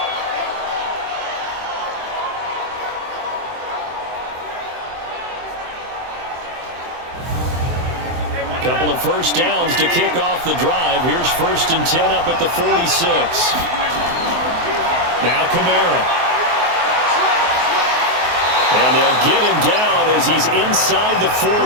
Couple of first downs to kick off the drive. Here's 1st and 10 up at the 46. Now Kamara. And they'll get him down as he's inside the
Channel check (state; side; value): late; left; 23 ms